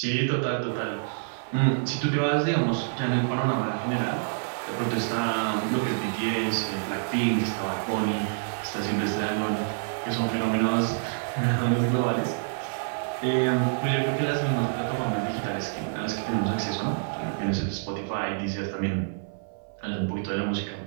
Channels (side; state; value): left; silent; 60 dB below the other